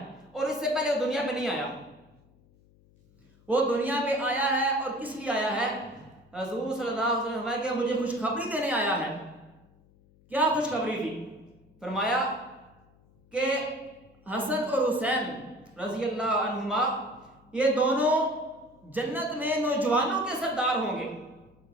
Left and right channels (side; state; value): left; noise; hum, 29 dB below the sound